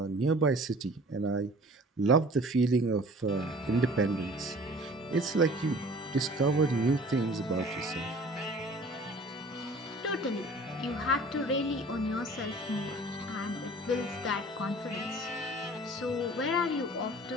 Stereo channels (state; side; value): normal; both; correlation 0.47